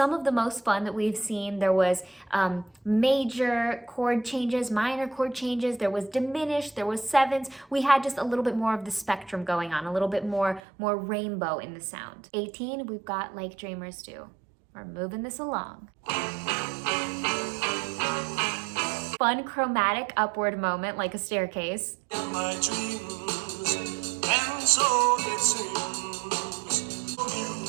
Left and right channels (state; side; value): drops out; left; at 10.6 s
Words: of the most fun that we've seen. There was major chord changes, minor chord changes. There was diminished. There was sevenths. We had just a little bit more of the spectrum going on, a little bit more rainbow in the sound. 18, we've got Like Dreamers Do. We're moving this along. Fun chromatic upward moment like a staircase. In my dreams, and so it seems,